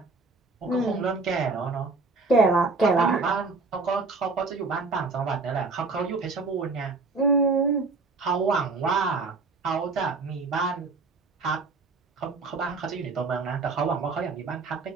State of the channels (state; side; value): quieter; left; 4.0 dB